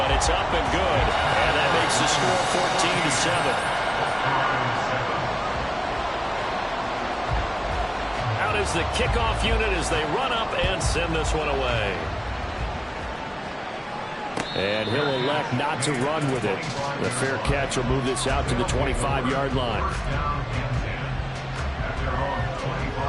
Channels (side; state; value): both; identical; correlation 1.00